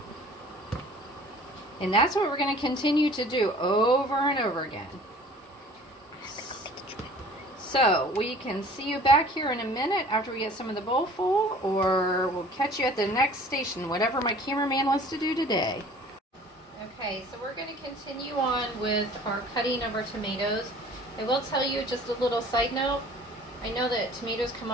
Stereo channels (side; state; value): both; normal; correlation 0.49